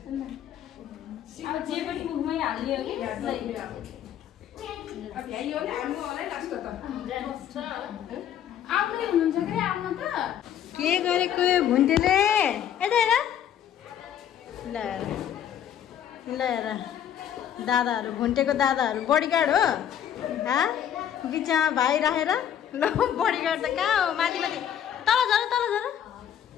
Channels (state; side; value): quieter; right; 9.9 dB